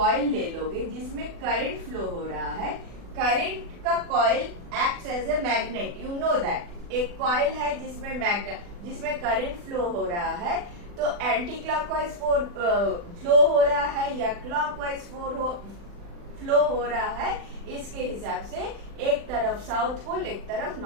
ले लोगे जिसमें करंट फ्लो हो रहा है, करंट का coil acts as a magnet, you know that. एक कॉइल है जिसमें करंट फ्लो हो रहा है, तो एंटी क्लॉकवाइज फ्लो हो रहा है या क्लॉकवाइज फ्लो हो रहा है, इसके हिसाब से एक तरफ साउथ पोल एक तरफ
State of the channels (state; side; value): late; left; 40 ms